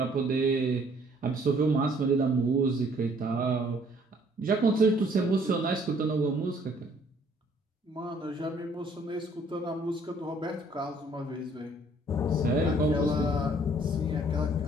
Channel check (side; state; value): both; normal; correlation 0.60